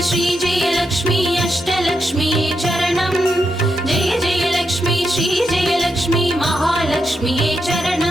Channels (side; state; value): both; normal; correlation 0.84